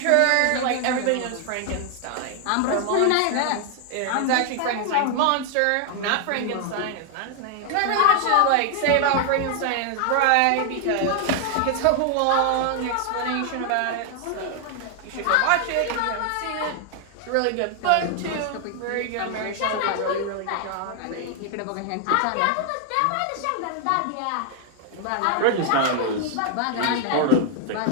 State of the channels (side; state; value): both; different; correlation 0.00